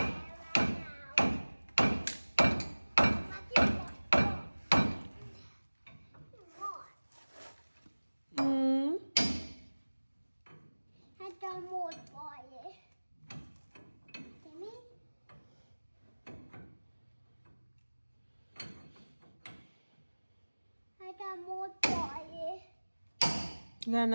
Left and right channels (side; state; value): both; inverted; correlation -1.00